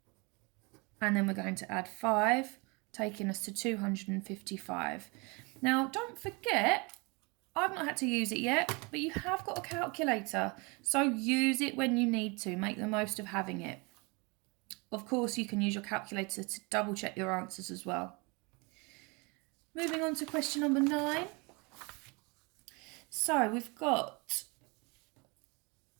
And then we're going to add 5, taking us to 255. Now, don't forget, I've not had to use it yet, but you have got a calculator. So use it when you need to. Make the most of having it. Of course, you can use your calculator to double check your answers as well. Moving on to question number 9. So we've got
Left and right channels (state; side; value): quieter; left; 29.2 dB